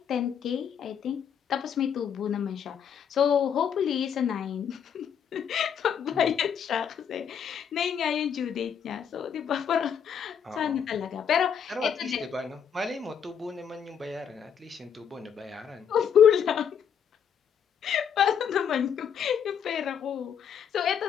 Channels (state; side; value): quieter; right; 7.9 dB